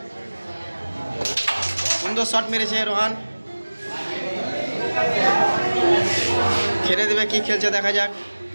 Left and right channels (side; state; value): both; inverted; correlation -1.00